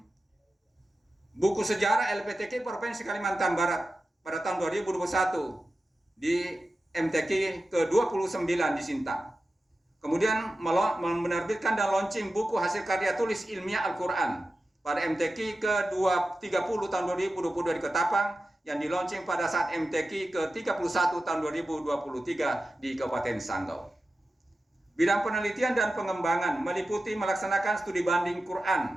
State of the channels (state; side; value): normal; both; correlation 0.93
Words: buku sejarah LPTQ Provinsi Kalimantan Barat pada tahun 2021 di MTQ ke-29 di Sintang. Kemudian menerbitkan dan launching buku hasil karya tulis ilmiah Al-Quran pada MTQ ke-30 tahun 2022 di Ketapang, yang di-launching pada saat MTQ ke-31 tahun 2023 di Kabupaten Sanggau. Bidang penelitian dan pengembangan meliputi melaksanakan studi banding